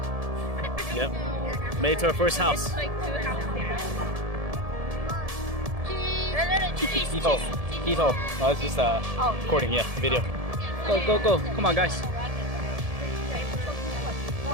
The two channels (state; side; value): late; left; 1.7 ms